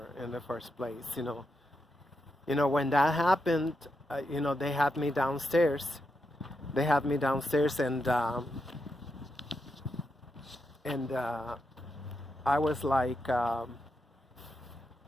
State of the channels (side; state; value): both; normal; correlation 0.85